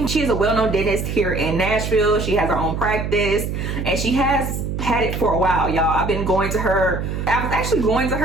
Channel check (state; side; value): noise; right; hum, 3 dB below the sound